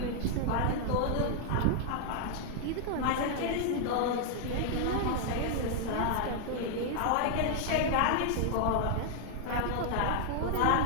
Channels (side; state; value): both; different; correlation 0.00